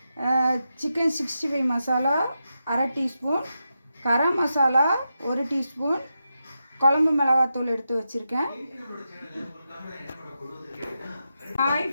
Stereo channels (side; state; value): both; inverted; correlation -0.88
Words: சிக்கன் 65 மசாலா அரை டீஸ்பூன், கரம் மசாலா 1 டீஸ்பூன், குழம்பு மிளகாத்தூள் எடுத்து வச்சுருக்கேன். ஹாய்